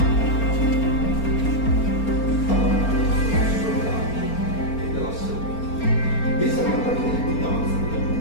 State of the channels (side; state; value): right; late; 4.3 ms